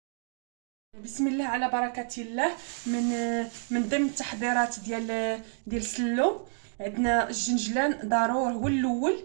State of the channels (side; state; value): left; silent; 58 dB below the other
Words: بسم الله على بركة الله. من ضمن التحضيرات ديال السلو، عندنا الجنجلان ضروري.